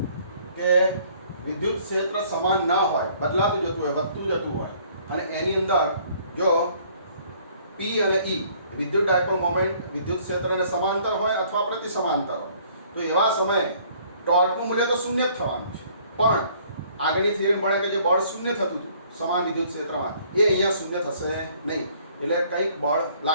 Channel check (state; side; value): inverted; both; correlation -0.59